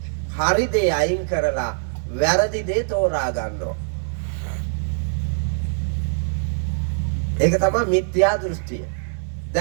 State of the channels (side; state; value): left; silent; 59 dB below the other